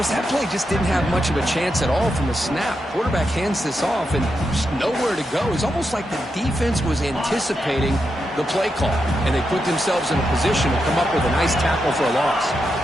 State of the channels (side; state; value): both; normal; correlation 0.85